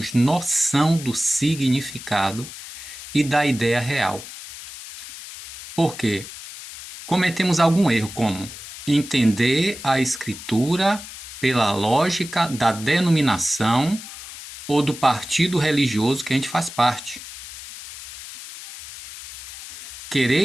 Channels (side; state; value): left; noise; hiss, 13 dB below the sound